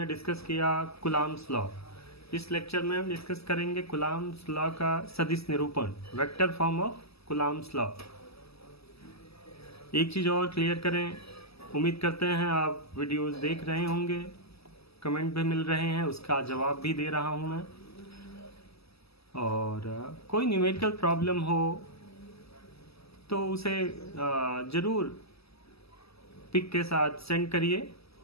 discuss किया कुलाम्स लॉ। इस लेक्चर में हम डिस्कस करेंगे कुलाम्स लॉ का सदिश निरूपण, vector form of Coulomb's law. एक चीज़ और क्लियर करें, उम्मीद करते हैं आप वीडियोस देख रहे होंगे, कमेंट भी मिल रहे हैं, उसका जवाब भी दे रहा हूं मैं। और कोई न्यूमेरिकल प्रॉब्लम हो तो उसे ज़रूर पिक के साथ सेंड करिए,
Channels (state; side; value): late; right; 0.78 ms